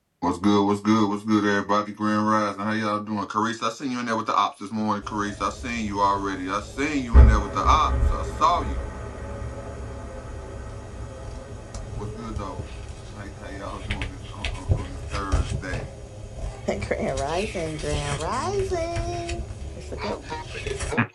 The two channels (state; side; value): identical; both; correlation 1.00